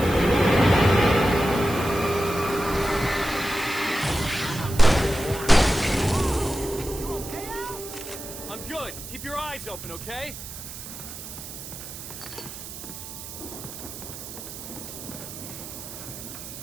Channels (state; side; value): noise; right; hiss, 11 dB below the sound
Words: I'm good. Keep your eyes open, okay?